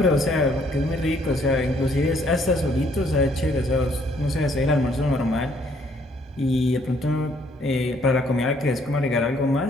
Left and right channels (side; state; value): both; normal; correlation 0.66